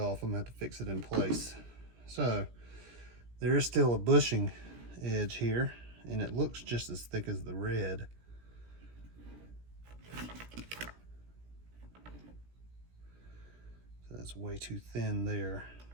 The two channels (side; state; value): left; late; 17 ms